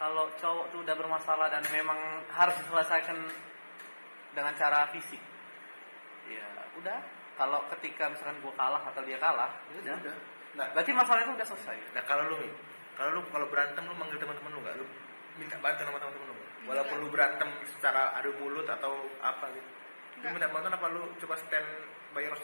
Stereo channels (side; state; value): both; inverted; correlation -1.00